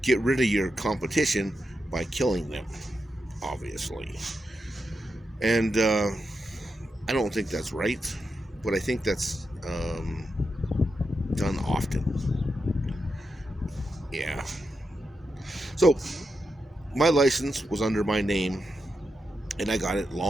get rid of your competition by killing them, obviously. And I don't think that's right, but I think that's done often. Yeah. So my license was under my name, and I got it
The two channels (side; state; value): both; normal; correlation 0.86